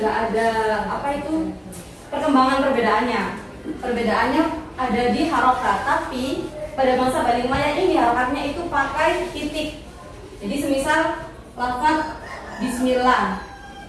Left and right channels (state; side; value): identical; both; correlation 1.00